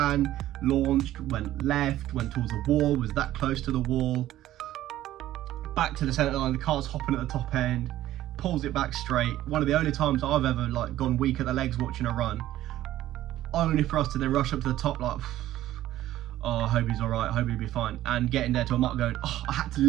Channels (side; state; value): left; quieter; 14.0 dB